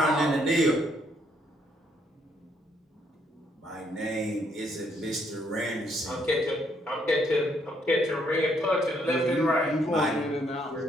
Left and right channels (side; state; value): both; normal; correlation 0.71